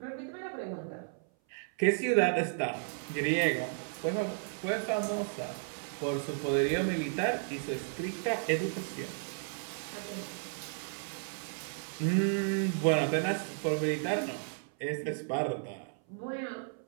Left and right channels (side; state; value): left; silent; 55 dB below the other